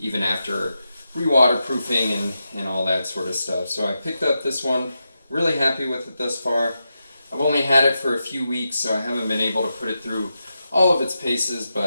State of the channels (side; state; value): both; inverted; correlation -0.88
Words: after re-waterproofing and all that sort of stuff. So I picked up this one, really happy with it thus far. I've only had it for a few weeks, so I haven't been able to put it through all of its paces,